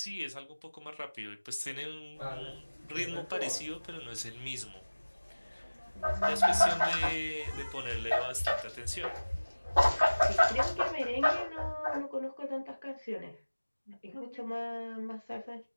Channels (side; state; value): both; inverted; correlation -1.00